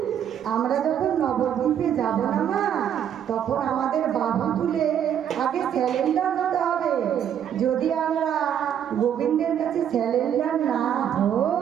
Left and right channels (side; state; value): left; quieter; 9.4 dB